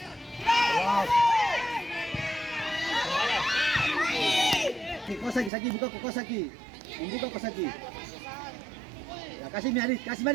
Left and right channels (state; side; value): drops out; left; at 5.5 s